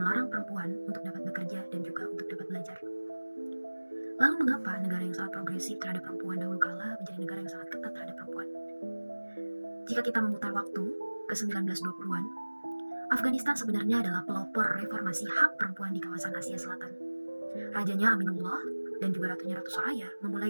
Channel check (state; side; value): inverted; both; correlation -1.00